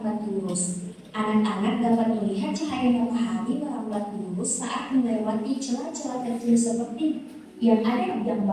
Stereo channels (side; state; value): both; identical; correlation 1.00